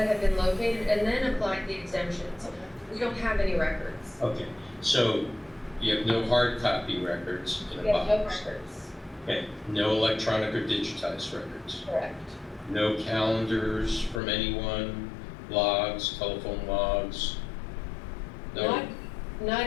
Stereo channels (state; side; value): drops out; right; at 14.2 s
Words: have been located and then applied the exemptions. We don't have any records. Okay, so you have no hard copy records in a We have no box. records. Okay, no electronic or digitized records. Correct. No calendars from anyone, logs, telephone logs. No.